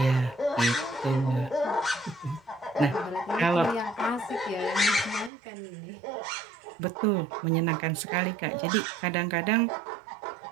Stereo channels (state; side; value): drops out; left; at 5.3 s